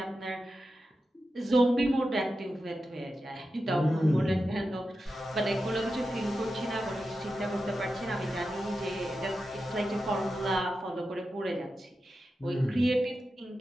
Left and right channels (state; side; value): normal; both; correlation 0.90